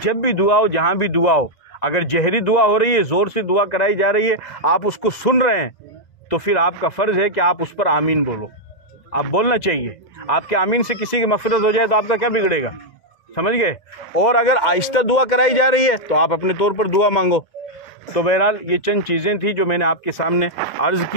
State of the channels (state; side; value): late; right; 1.9 ms